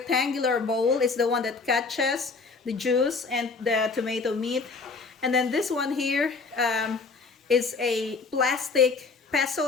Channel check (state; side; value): quieter; right; 4.4 dB